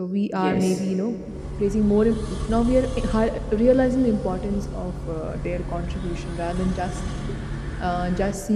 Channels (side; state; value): both; identical; correlation 1.00